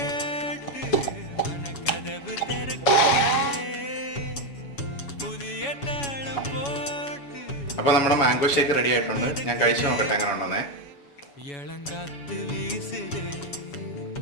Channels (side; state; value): right; late; 7.1 ms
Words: അപ്പോൾ നമ്മുടെ മാംഗോ ഷേക്ക് റെഡി ആയിട്ടുണ്ട്. ഞാൻ കഴിച്ചു നോക്കട്ടെ എങ്ങനെ ഉണ്ടെന്നേ.